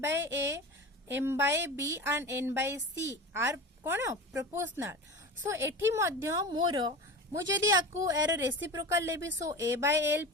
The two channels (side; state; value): both; normal; correlation 0.30